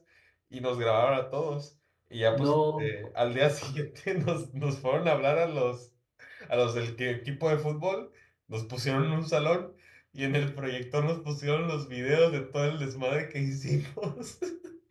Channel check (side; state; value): both; identical; correlation 1.00